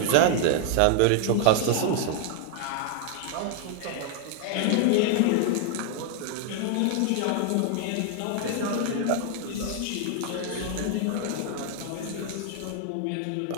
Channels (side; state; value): both; different; correlation 0.00